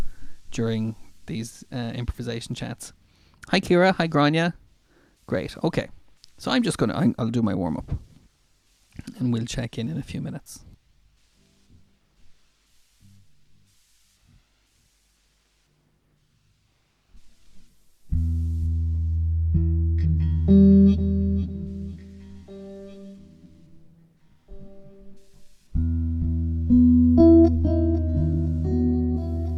during these improvisation chats. Hi Kira, hi Grania. Great, okay. So I'm just gonna, I'll do my warm up and we'll check in a few minutes.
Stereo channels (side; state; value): both; identical; correlation 1.00